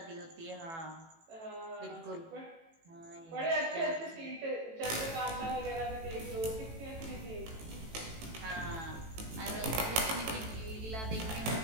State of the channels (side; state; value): left; late; 18 ms